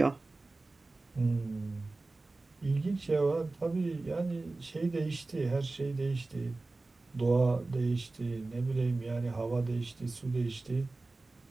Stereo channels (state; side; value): quieter; left; 3.3 dB